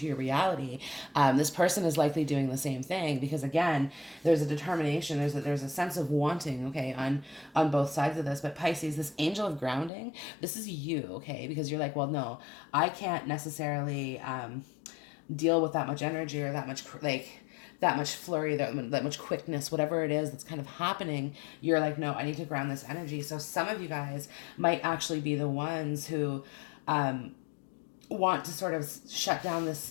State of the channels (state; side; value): drops out; right; at 9.9 s